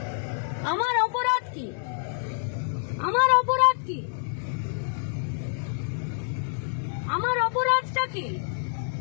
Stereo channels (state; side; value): silent; right; digital silence